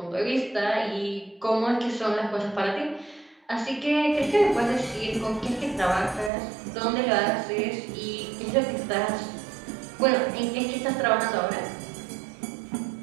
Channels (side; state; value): left; drops out; at 6.3 s